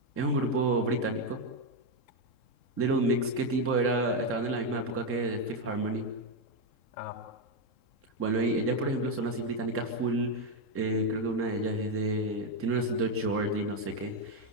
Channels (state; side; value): late; right; 3.7 ms